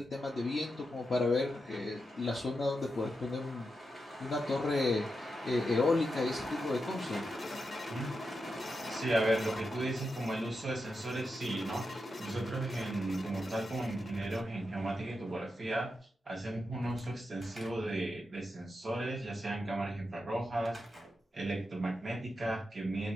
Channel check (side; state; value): both; normal; correlation 0.87